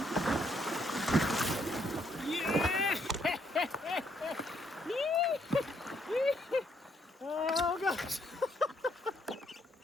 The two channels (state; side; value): normal; both; correlation 0.71